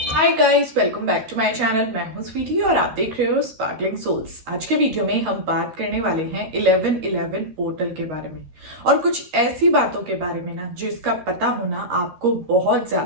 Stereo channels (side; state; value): left; late; 13 ms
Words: Hi guys, welcome back to my channel. मैं हूं स्वीटी और आप देख रहे हो स्पार्कलिंग सोल्स। आज के वीडियो में हम बात करने वाले हैं 1111 पोर्टल के बारे में और कुछ ऐसी बातों के बारे में ना जिसका पता होना आपको बहुत